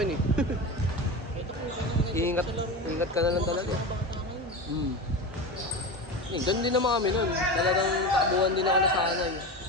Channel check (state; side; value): normal; both; correlation 0.24